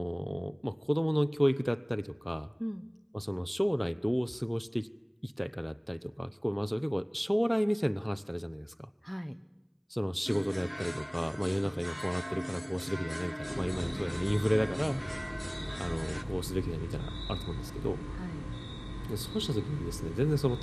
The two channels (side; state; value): both; identical; correlation 1.00